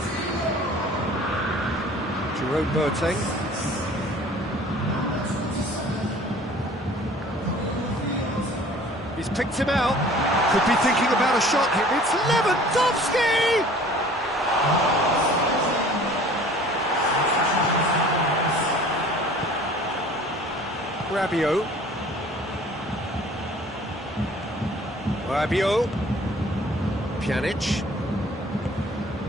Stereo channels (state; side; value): normal; both; correlation 0.49